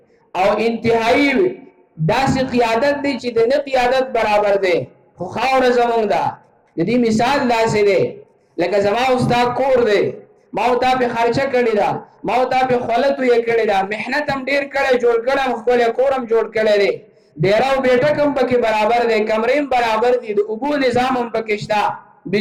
او انتهایی داسې قیادت دی چې د نه قیادت برابر دی. خو خاوره زمونږ ده. د دې مثال داسې دی لکه زما استاد کور دی، ما او تا په خرچه کړې ده، ما او تا په خولت یې کړې ده، محنت هم ډېر کړی، جوړ کړم، خپل کورم جوړ کړی دی، ډیراو بیٹک هم پکې برابر دی، کمرې هم برابر دي، د اوبو نظام هم پکې شته،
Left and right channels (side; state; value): both; identical; correlation 1.00